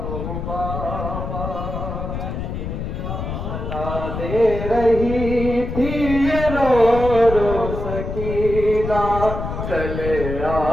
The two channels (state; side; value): noise; left; rumble, 5 dB below the sound